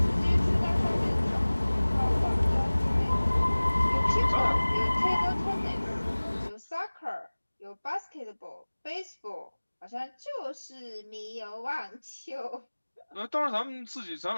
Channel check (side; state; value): both; inverted; correlation -1.00